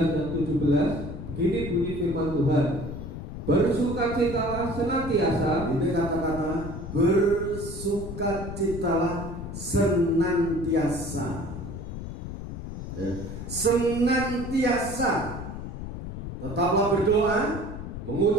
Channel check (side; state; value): left; noise; rumble, 8 dB below the sound